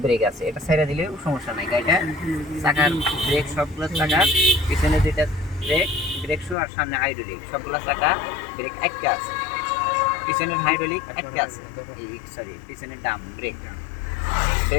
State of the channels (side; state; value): right; drops out; at 6.6 s